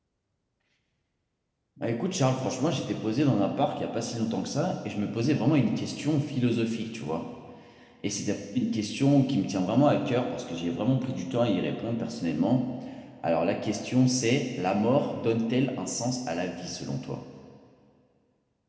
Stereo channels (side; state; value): both; identical; correlation 1.00